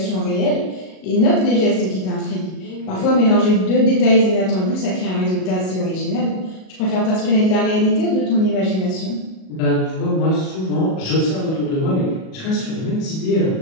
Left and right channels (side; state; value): right; late; 37 ms